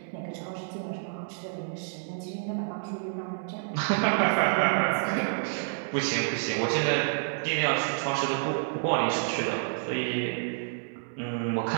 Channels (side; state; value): left; silent; 59 dB below the other